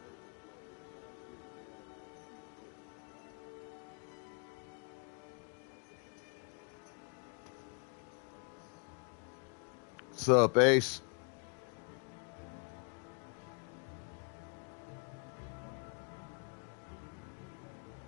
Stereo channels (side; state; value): right; quieter; 37.2 dB